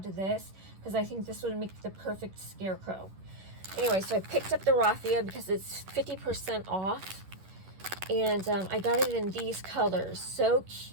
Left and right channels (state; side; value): late; left; 11 ms